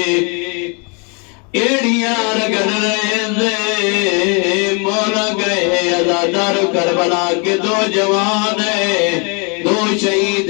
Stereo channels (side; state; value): right; quieter; 34.3 dB